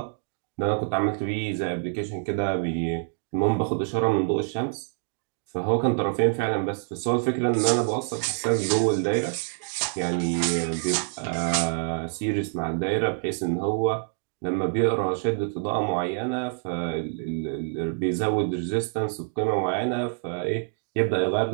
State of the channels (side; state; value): left; silent; digital silence